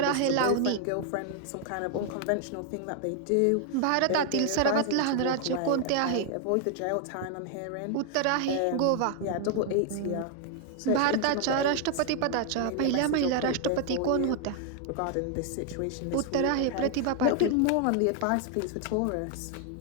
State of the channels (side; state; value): both; different; correlation 0.00